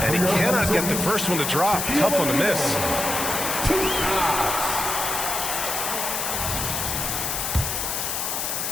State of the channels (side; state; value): left; noise; hiss, 2 dB below the sound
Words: And he cannot get the first one to drop. Tough one to miss.